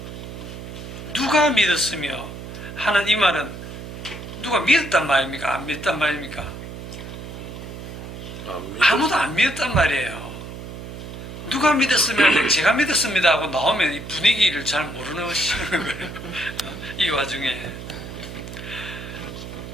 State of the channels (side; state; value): right; noise; hum, 10 dB below the sound